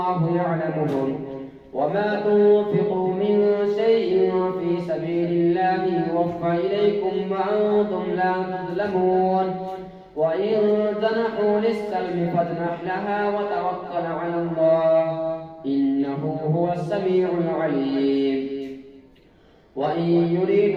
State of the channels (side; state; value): both; identical; correlation 1.00